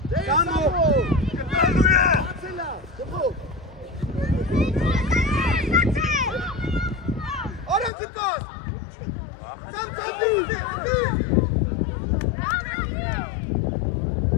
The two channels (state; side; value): drops out; right; at 7.9 s